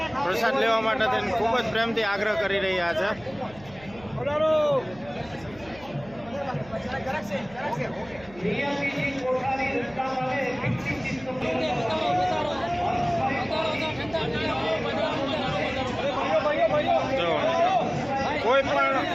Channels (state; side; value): noise; right; hum, 21 dB below the sound